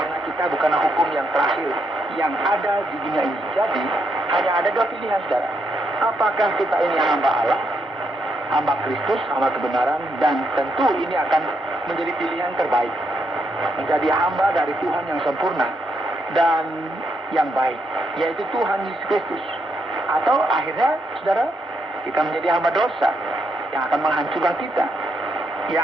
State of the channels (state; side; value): normal; both; correlation 0.78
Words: kita bukanlah hukum yang terakhir yang ada di dunia ini. Jadi hanya ada dua pilihan, saudara. Apakah kita ini hamba Allah, hamba Kristus, hamba kebenaran, dan tentu ini akan menjadi pilihan terbaik, menjadi hamba dari Tuhan yang sempurna dan yang baik, yaitu Tuhan Yesus Kristus. Atau akhirnya, saudara, kita menjadi hamba dosa yang akan menghancurkan kita,